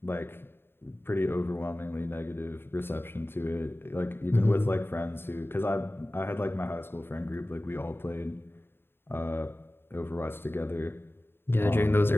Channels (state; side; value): late; right; 0.11 ms